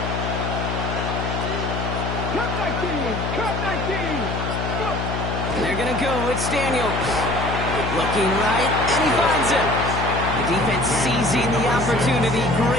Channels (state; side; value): noise; left; hum, 3 dB below the sound